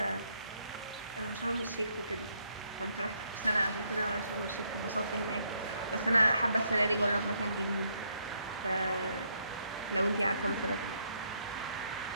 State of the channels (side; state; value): both; inverted; correlation -0.73